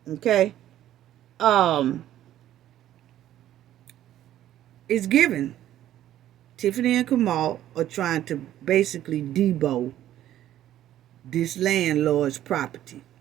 Okay? It's given. Tiffany and Kamal are trying to basically debo this landlord's property.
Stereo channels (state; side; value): quieter; left; 12.5 dB